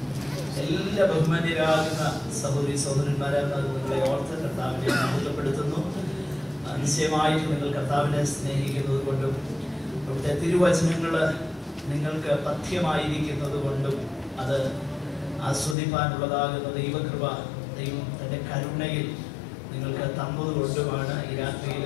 എല്ലാ ബഹുമാന്യരാകുന്ന സഹോദരി സഹോദരന്മാരെ നിങ്ങളെ ഓർത്ത് കർത്താവിനെ മഹത്വപ്പെടുത്തുന്നു. നിശ്ചയമായിട്ട് നിങ്ങൾ കർത്താവിനെ സ്നേഹിക്കുന്നത് കൊണ്ടും അവിടുത്തെ തിരുവചനങ്ങൾ നിങ്ങൾക്ക് പഥ്യമായിരിക്കുന്നത് കൊണ്ടും അത് ആസ്വദിപ്പാനുള്ളതാകുന്ന ദൈവകൃപ ദൈവം തൻ്റെ കരുണയിൽ നിങ്ങൾക്ക് തന്നത് കൊണ്ടുമാണ് ഈ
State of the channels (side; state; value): right; drops out; at 15.8 s